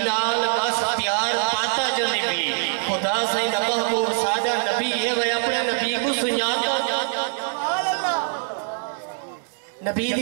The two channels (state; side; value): silent; left; 63 dB below the other